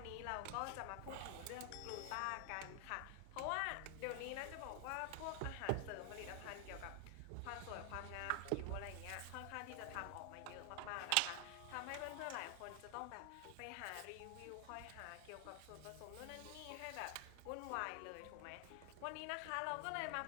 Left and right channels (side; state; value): both; different; correlation 0.00